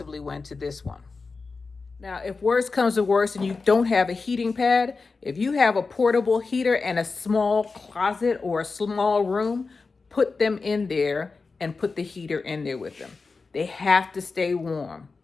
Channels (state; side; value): quieter; right; 4.3 dB